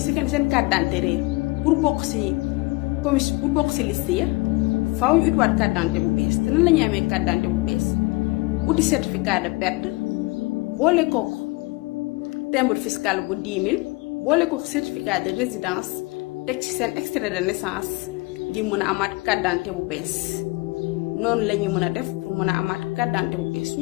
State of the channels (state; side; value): quieter; right; 24.2 dB